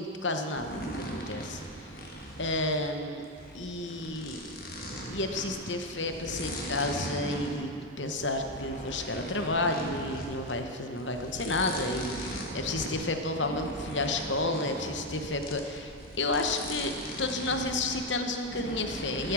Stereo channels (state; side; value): normal; both; correlation 0.06